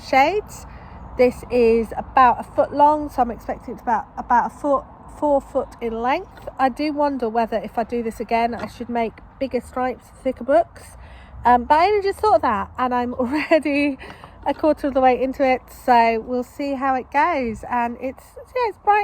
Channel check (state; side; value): identical; both; correlation 1.00